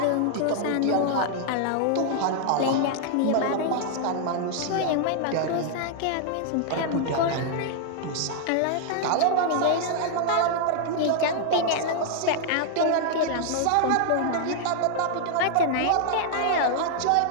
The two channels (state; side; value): different; both; correlation 0.00